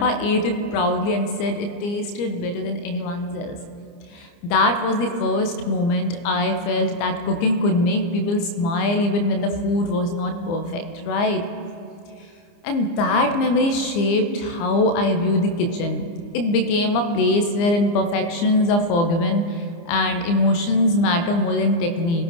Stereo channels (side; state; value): right; late; 30 ms